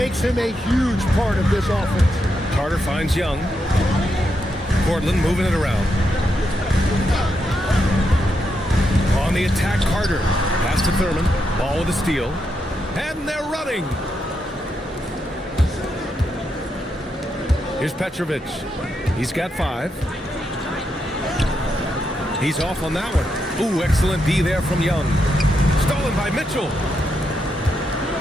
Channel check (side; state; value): both; normal; correlation 0.82